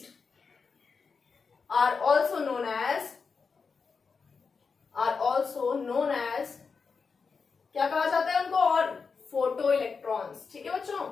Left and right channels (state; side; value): quieter; right; 5.2 dB